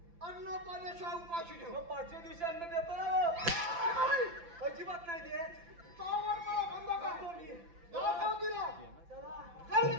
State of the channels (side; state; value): left; late; 5.9 ms